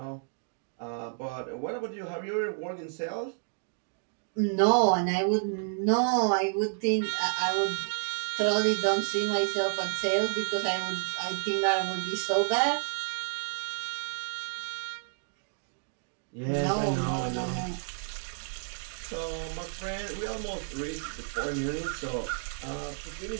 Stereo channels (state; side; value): silent; left; digital silence